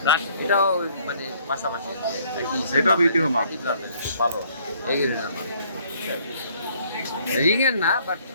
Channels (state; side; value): inverted; both; correlation -0.63